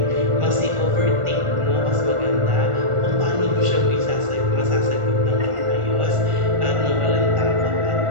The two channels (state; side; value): late; left; 1.4 ms